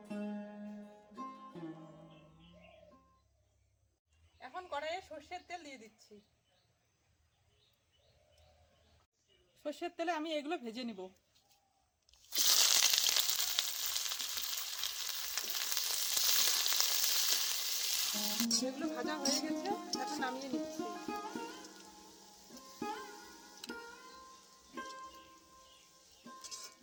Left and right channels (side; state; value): both; identical; correlation 1.00